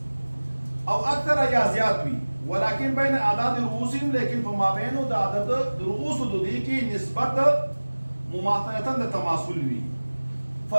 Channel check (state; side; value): inverted; both; correlation -1.00